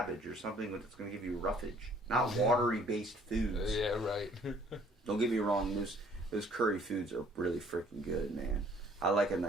or something that's going to give you roughage, not watery-based foods. Yeah, right. Don't get me wrong, those curry foods are really freaking good, man. I like a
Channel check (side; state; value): both; normal; correlation 0.58